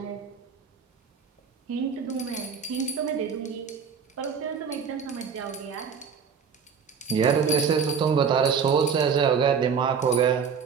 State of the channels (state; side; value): quieter; left; 6.5 dB